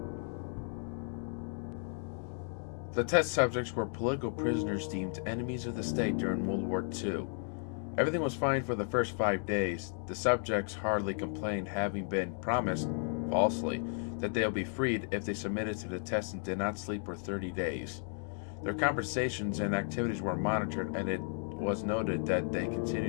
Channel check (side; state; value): right; silent; 55 dB below the other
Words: The test subjects were political prisoners deemed enemies of the state during World War II. Everything was fine for the first 5 days. The subjects hardly complained, having been promised, falsely, that they'll be freed if they submitted to the test and did not sleep for 30 days. Their conversations and activities were monitored, and it was noted that they